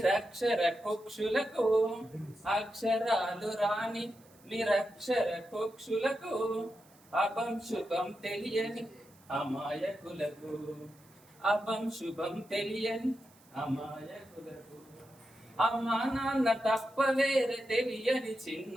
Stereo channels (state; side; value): noise; right; hiss, 28 dB below the sound